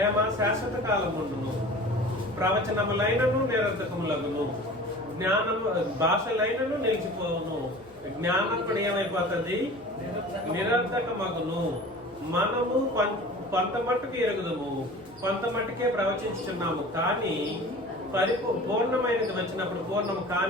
శాశ్వత కాలముండును, ప్రవచనములైనను నిరర్థకములగును, జ్ఞానము భాషలైనను నిలిచిపోవును, జ్ఞానం కూడా ఏమైపోతుంది? నిరర్థకమగును. మనము కొంత మట్టుకు ఎరుగుదము, కొంత మట్టుకే ప్రవచించుచున్నాము, కానీ పూర్ణమైనది వచ్చినప్పుడు పూర్ణము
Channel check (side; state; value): both; normal; correlation 0.40